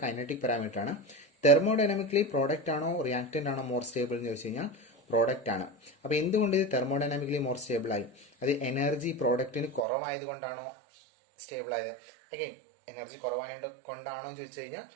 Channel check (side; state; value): left; drops out; at 9.9 s